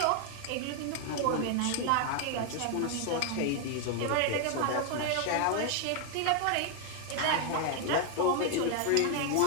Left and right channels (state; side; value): different; both; correlation 0.00